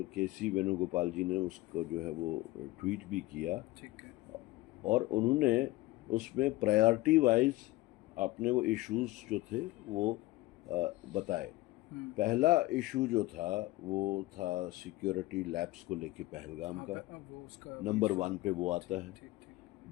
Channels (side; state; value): right; quieter; 18.7 dB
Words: केसी वेणुगोपाल जी ने उसको जो है वो ट्वीट भी किया, ठीक है। और उन्होंने उसमें प्रायोरिटी वाइज अपने वो इश्यूज जो थे वो बताए। पहला इशू जो था वो था सिक्योरिटी लैब्स को लेके पहलगाम का, वो उसका नंबर 1 पे वो आता है। ठीक